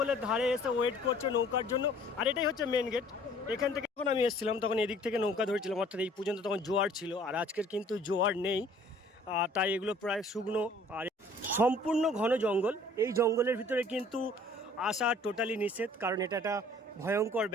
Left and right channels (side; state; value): both; normal; correlation 0.54